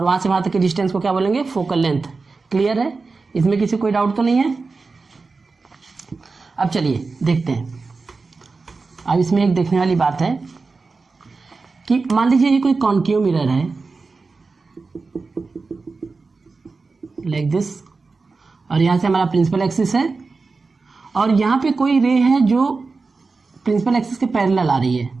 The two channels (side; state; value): left; quieter; 4.1 dB